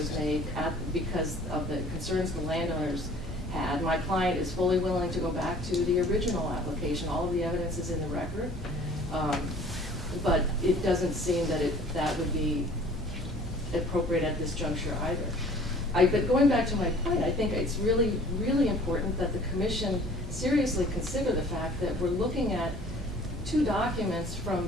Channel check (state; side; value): normal; both; correlation 0.50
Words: made because of the concerns the landowners had. My client is fully willing to go back to the original application. All of the evidence is in the record. But it doesn't seem that that would be appropriate at this juncture either. But going back to my point, I think it's really, really important that the commission seriously consider the fact that we're looking at two documents